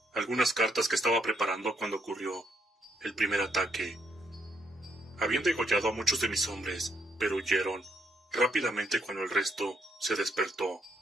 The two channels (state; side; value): normal; both; correlation 0.75